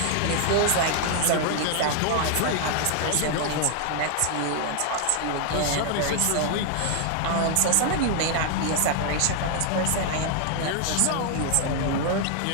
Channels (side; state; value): both; different; correlation 0.00